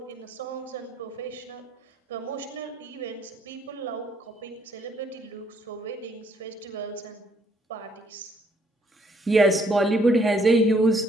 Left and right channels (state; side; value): normal; both; correlation 0.66